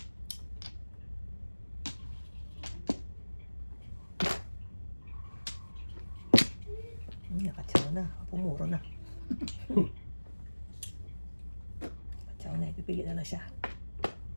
Nakatsaw na. Pumuro na. Nakatsaw na. Ipipili na lang siya.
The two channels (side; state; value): both; inverted; correlation -1.00